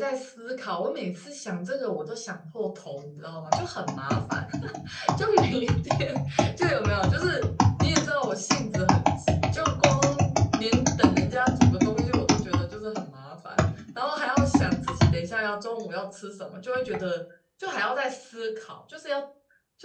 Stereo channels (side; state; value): both; identical; correlation 1.00